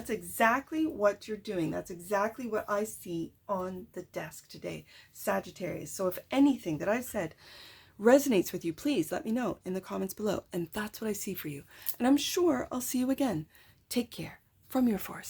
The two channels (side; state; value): both; identical; correlation 1.00